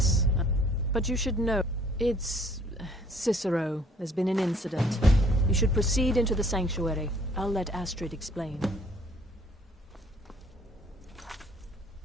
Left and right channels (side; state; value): both; normal; correlation 0.59